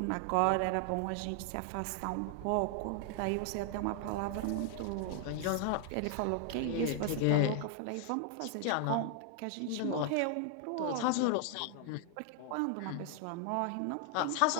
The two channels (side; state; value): both; different; correlation 0.00